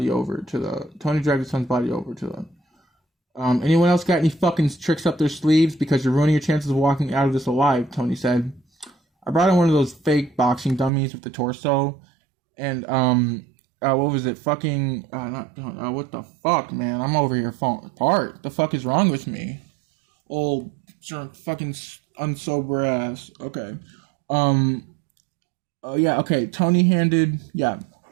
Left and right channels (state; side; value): drops out; left; at 10.9 s